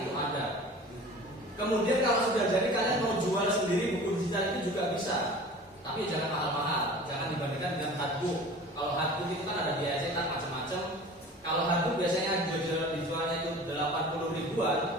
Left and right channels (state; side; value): normal; both; correlation 0.41